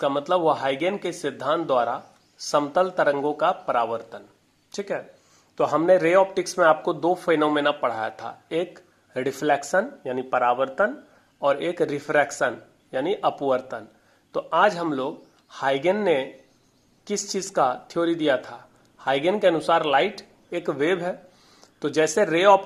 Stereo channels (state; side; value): identical; both; correlation 1.00